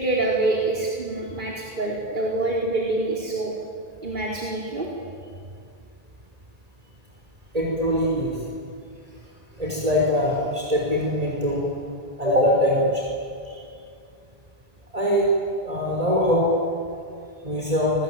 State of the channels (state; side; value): late; left; 1.8 ms